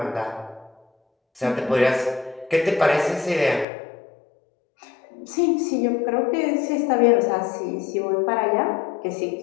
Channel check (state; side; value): drops out; right; at 3.7 s